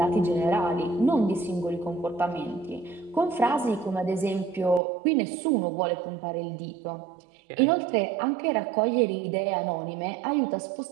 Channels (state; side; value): drops out; left; at 4.8 s